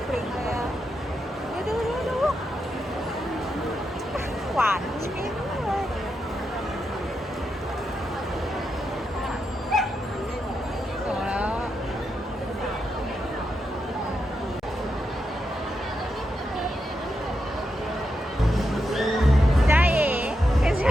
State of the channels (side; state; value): both; normal; correlation 0.85